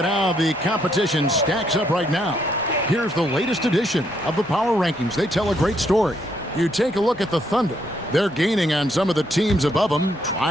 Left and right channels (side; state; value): both; normal; correlation 0.73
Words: how the competition stacks up right now, here's the latest edition of the Power Rankings. They tell a great story. You take a look at the Thunder. They're gaining on some of the teams above them,